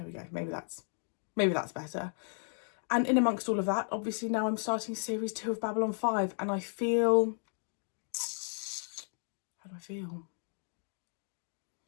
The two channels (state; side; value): silent; right; digital silence